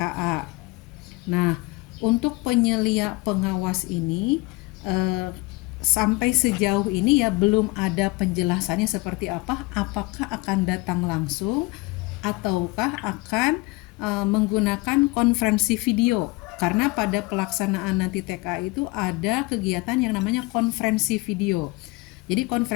Nah, untuk penyelia pengawas ini eh, sampai sejauh ini ya belum ada penjelasannya seperti apa, apakah akan datang langsung ataukah akan menggunakan konferensi video. Karena pada pelaksanaan nanti TKA itu ada kegiatan yang namanya konferensi video. Jadi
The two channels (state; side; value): quieter; right; 23.7 dB